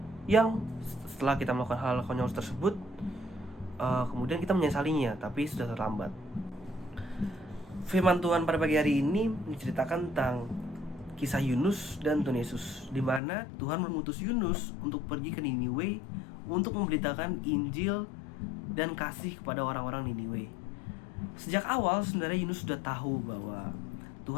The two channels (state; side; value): drops out; right; at 13.2 s